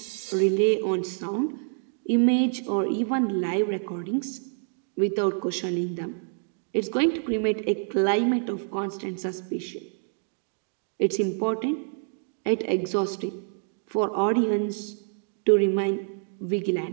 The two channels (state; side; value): silent; left; digital silence